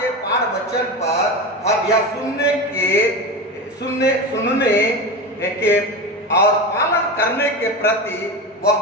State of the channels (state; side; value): normal; both; correlation 0.23